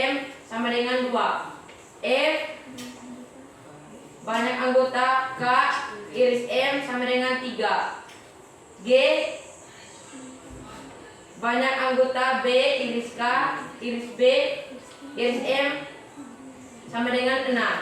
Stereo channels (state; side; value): identical; both; correlation 1.00